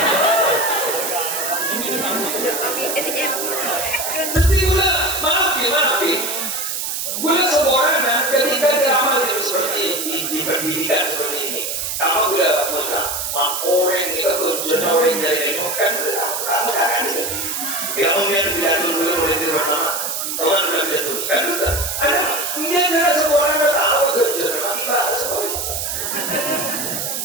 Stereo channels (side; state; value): right; noise; hiss, 3 dB below the sound